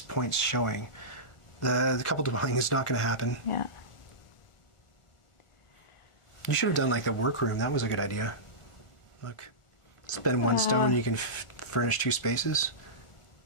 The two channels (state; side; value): late; right; 1.4 ms